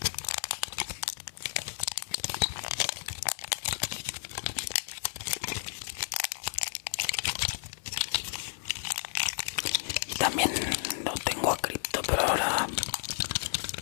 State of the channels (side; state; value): right; silent; 56 dB below the other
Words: Y también lo tengo a Crypto, pero ahora